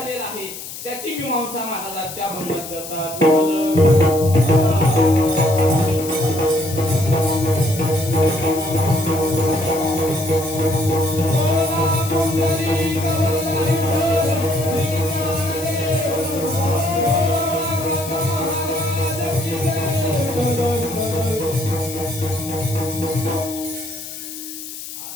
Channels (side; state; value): left; noise; hiss, 11 dB below the sound